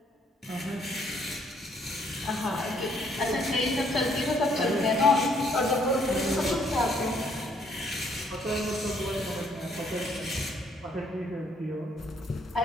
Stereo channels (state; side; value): normal; both; correlation 0.67